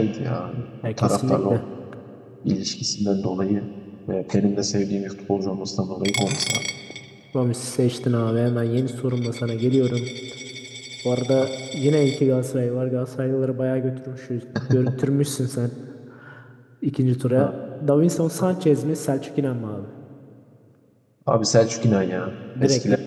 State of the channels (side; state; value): both; identical; correlation 1.00